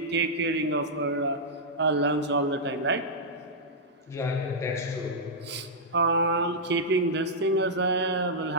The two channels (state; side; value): normal; both; correlation -0.09